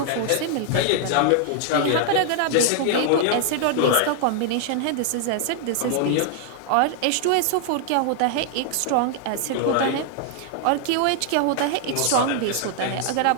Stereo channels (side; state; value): both; different; correlation 0.00